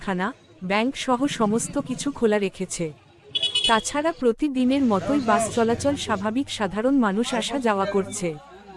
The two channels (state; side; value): identical; both; correlation 1.00